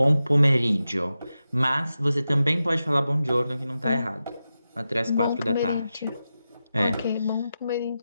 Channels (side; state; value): both; inverted; correlation -0.91